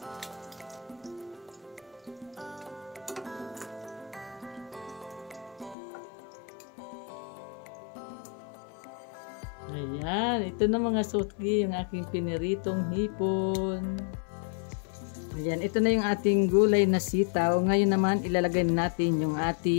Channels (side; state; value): right; drops out; at 5.8 s